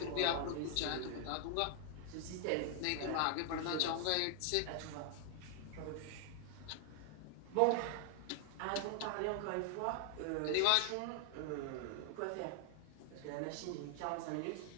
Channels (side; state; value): both; different; correlation 0.00